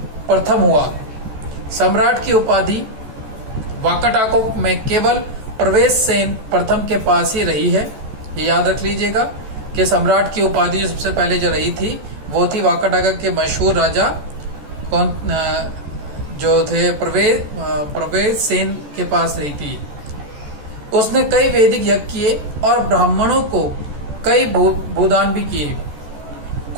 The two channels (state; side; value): late; left; 14 ms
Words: प्रथम हुआ। सम्राट की उपाधि वाकाटकों में केवल प्रवेश सेन प्रथम के पास ही रही है। ये याद रख लीजिएगा कि सम्राट की उपाधि जो सबसे पहले जो रही थी वो थी वाकाटक के मशहूर राजा कौन जो थे प्रवेश सेन के पास रही थी। उसने कई वैदिक यज्ञ किए और ब्राह्मणों को कई भूदान भी किए।